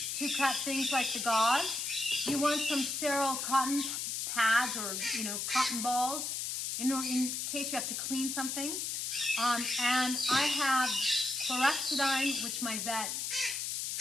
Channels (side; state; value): left; noise; hiss, 2 dB below the sound